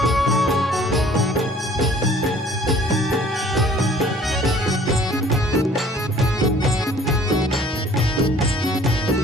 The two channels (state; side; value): normal; both; correlation 0.54